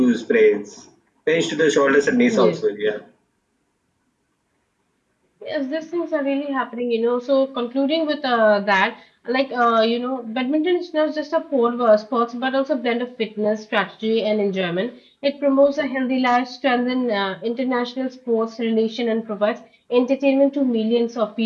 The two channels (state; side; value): identical; both; correlation 1.00